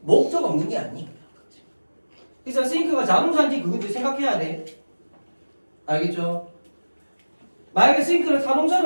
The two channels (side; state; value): both; inverted; correlation -1.00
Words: 없는 게 아니야. 그래서 think가 자동사인지 그것도 생각해야 돼. 알겠죠? 만약에 think를